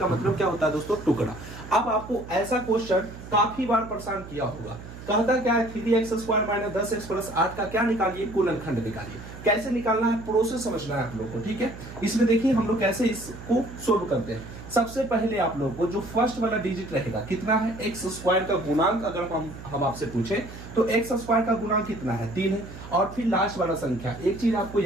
मतलब क्या होता है दोस्तों? टुकड़ा। अब आपको ऐसा क्वेश्चन काफी बार परेशान किया होगा, कहता क्या है 3x² - 10x + 8 का क्या निकालिए, गुणनखंड निकालिए। कैसे निकालना है, प्रोसेस समझना है आप लोग को, ठीक है। इसमें देखिए हम लोग कैसे इसको सोल्व करते हैं। सबसे पहले आप लोग को जो फर्स्ट वाला डिजिट रहेगा कितना है, x² का गुणांक अगर हम आपसे पूछे तो x² का गुणांक कितना है, 3 है। और फिर लास्ट वाला संख्या, एक चीज आपको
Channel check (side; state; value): right; noise; hum, 14 dB below the sound